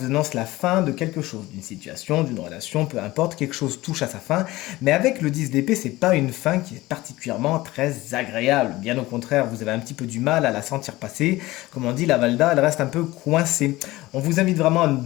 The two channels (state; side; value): quieter; right; 18.6 dB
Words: annonce la fin de quelque chose, d'une situation, d'une relation, peu importe, quelque chose touche à sa fin. Mais avec le 10 d'épée, c'est pas une fin qui est particulièrement très agréable. Bien au contraire, vous avez un petit peu du mal à la sentir passer. Comme on dit, la Valda, elle reste un peu coincée. On vous invite vraiment à